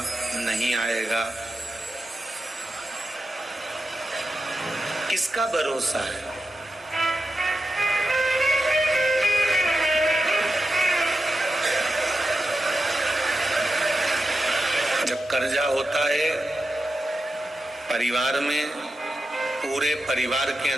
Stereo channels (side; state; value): both; normal; correlation 0.89